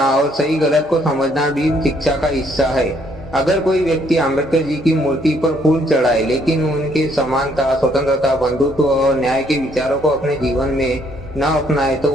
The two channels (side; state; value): both; normal; correlation 0.68